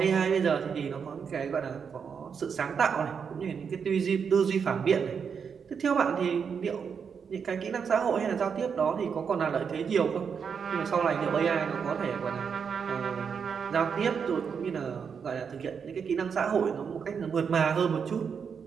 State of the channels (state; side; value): quieter; left; 6.5 dB